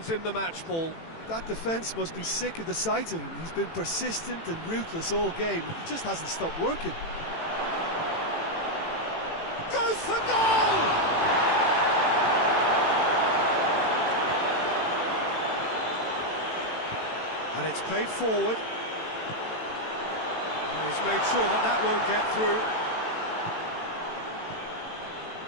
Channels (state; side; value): late; right; 18 ms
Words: him the match ball. That defence must be sick of the sight of him. He's been persistent and ruthless all game. He just hasn't stopped working. Goes for goal! And it's played forward. And he's made sure that that won't get through.